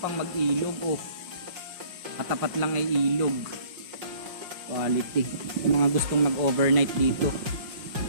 mag-ilog. Oh, katapat lang ay ilog. Quality. Yung mga gustong mag-overnight dito.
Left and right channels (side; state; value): left; late; 5.5 ms